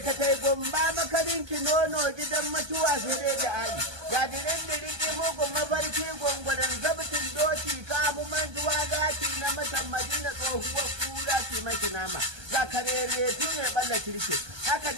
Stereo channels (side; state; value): left; late; 1.2 ms